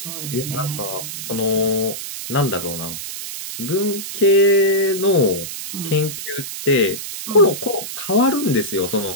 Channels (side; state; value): right; noise; hiss, 8 dB below the sound